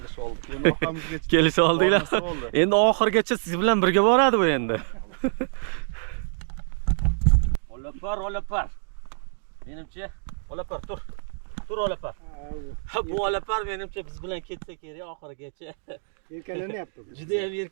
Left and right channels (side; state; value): left; silent; digital silence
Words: oldik. Endi orqamizga Kelishib oldinglar. Endi oxirgacha siz bilan birga boradi bu endi. Olapar, olapar. Menimcha olapar tur. Tur olapar. Bu olapar menimcha biz bilan ketsa kerak oxirigacha. Yelkalanyapti. Juda ham